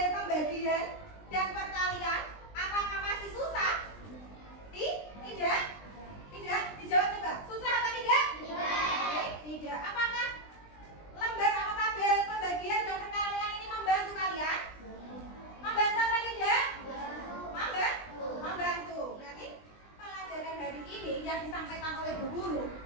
pembagian dan perkalian, apakah masih susah? Tidak? Tidak? Dijawab coba. Susah apa tidak? Tidak. Apakah lembar atau tabel pembagian dan perkalian ini membantu kalian? Membantu apa tidak? Membantu. Berarti pelajaran hari ini yang disampaikan oleh Bu Guru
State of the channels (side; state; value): right; late; 20 ms